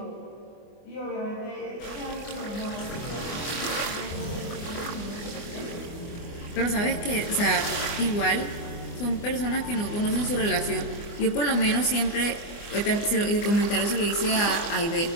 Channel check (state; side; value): late; right; 24 ms